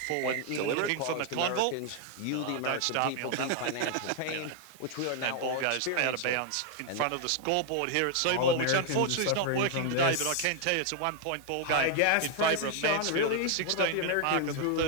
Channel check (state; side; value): different; both; correlation 0.00